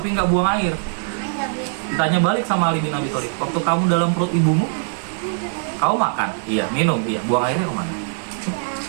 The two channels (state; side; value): silent; left; digital silence